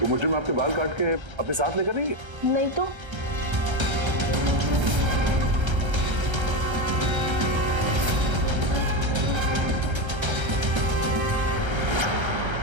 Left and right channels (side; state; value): left; late; 1.3 ms